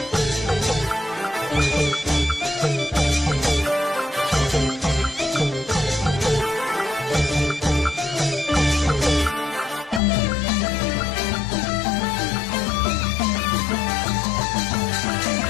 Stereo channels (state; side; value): drops out; right; at 10.0 s